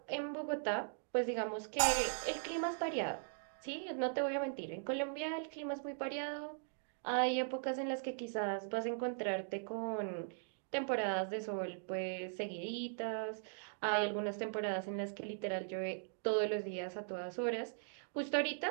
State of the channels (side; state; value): left; silent; digital silence